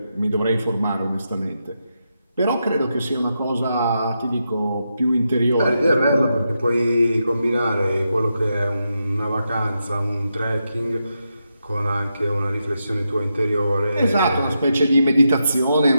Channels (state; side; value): inverted; both; correlation -0.85